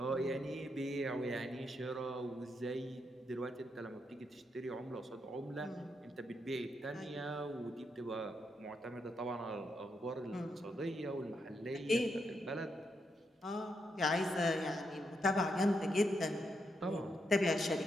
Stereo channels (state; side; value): normal; both; correlation 0.81